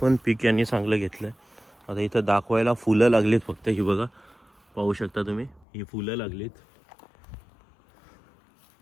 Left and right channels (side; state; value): right; drops out; at 5.7 s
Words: पण पीक यांनी चांगलं घेतलं आहे. आता इथं दाखवायला फुलं लागलीत फक्त. ही बघा पाहू शकता तुम्ही ही फुलं लागलीत.